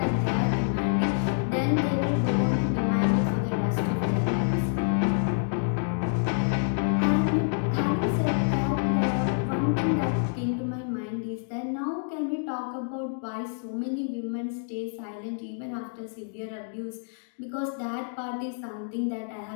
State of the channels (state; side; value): silent; right; digital silence